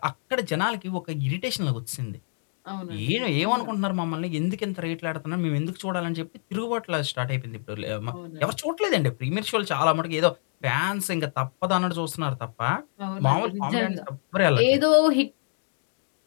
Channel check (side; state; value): right; silent; digital silence